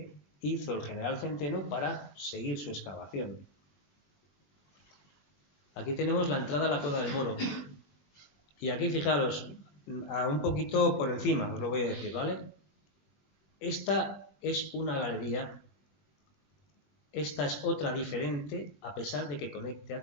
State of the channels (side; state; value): right; late; 20 ms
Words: hizo el general Centeno para seguir su excavación. Aquí tenemos la entrada a la Cueva del Moro, y aquí fijaros, un poquito por encima, os lo voy a decir, ¿vale? Esta es una galería, esta es otra diferente, a pesar de que conecte